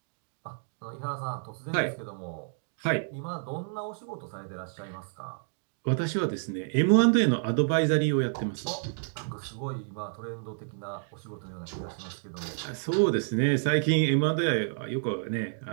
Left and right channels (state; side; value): silent; left; digital silence